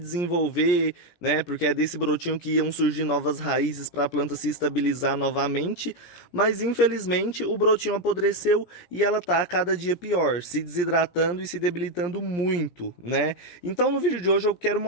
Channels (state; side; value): late; right; 17 ms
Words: né? Porque é desse brotinho que iam surgir novas raízes para a planta se estabilizar novamente. Mas infelizmente o brotinho apodreceu e ela tá a cada dia pior, se desidratando e se debilitando muito, né? Então no vídeo de hoje eu quero